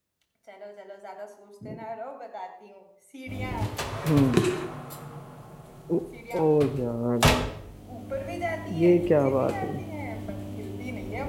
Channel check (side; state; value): both; identical; correlation 1.00